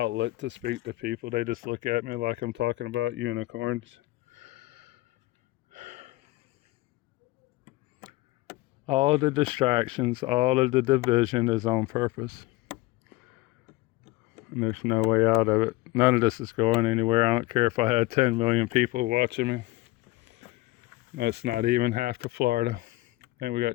to speak to people. They just look at me like I'm talking about unicorns. All the distractions, all of the division is on purpose. And there's no way out of it. None of this is going anywhere. I don't care if I had 10 million people watching me. That's not even half to Florida. I think we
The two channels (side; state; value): right; quieter; 19.8 dB